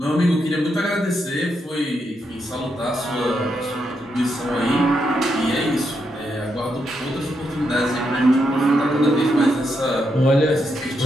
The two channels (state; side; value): normal; both; correlation 0.81